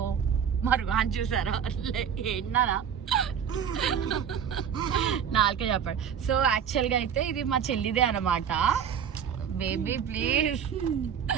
మరి అని చూసారా ఏంటన్నా నాలుకే చెప్పాడు. సో యాక్చువల్గా అయితే ఇది మా చెల్లిదే అనమాట. Baby please.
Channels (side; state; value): left; quieter; 8.0 dB